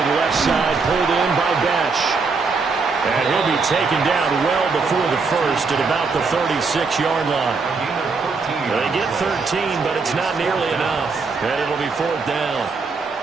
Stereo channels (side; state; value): left; quieter; 4.5 dB